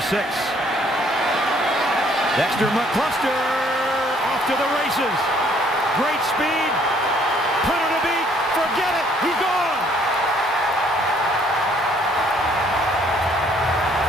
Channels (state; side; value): normal; both; correlation 0.63